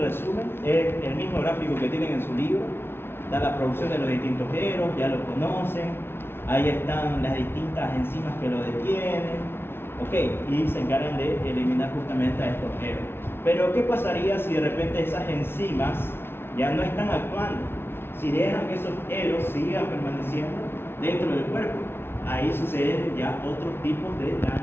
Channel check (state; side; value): late; right; 0.11 ms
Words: Es el mismo gráfico que tienen en su libro. Da la producción de los distintos eros, ya lo conocen. Ahí están las distintas enzimas que lo detienen. Ok, y se encargan de eliminar justamente a estos eros. Pero ¿qué pasaría si de repente esas enzimas ya no están actuando? Si dejan que esos eros sigan permaneciendo dentro del cuerpo, ahí suceden ya otros tipos de